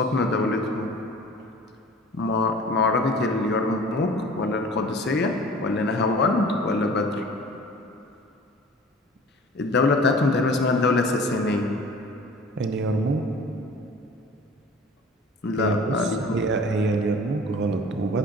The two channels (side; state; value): both; normal; correlation 0.45